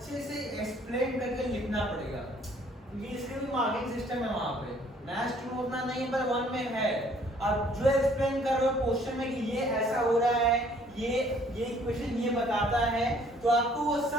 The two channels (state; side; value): normal; both; correlation 0.60